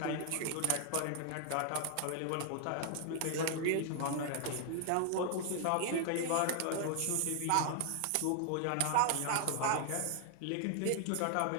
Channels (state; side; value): different; both; correlation 0.00